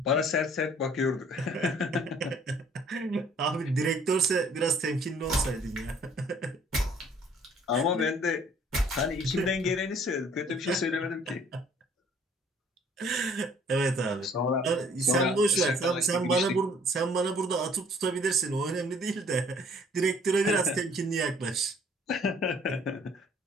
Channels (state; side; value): normal; both; correlation 0.57